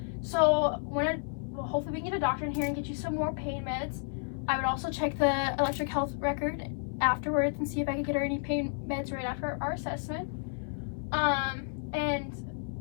So hopefully we can get a doctor in here and get you some more pain meds. I would also check the electric health record afterwards and see if I could get her any pain meds right after our assessment. And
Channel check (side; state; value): right; silent; 57 dB below the other